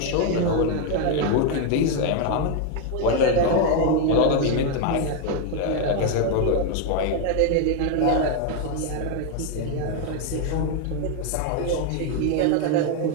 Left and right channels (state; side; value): different; both; correlation 0.01